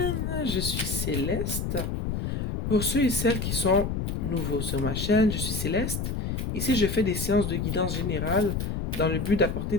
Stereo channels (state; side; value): noise; left; rumble, 2 dB below the sound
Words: je suis Céleste. Pour ceux et celles qui sont nouveaux sur ma chaîne, je suis Céleste. Ici, je fais des séances de guidance générale dans le but d'apporter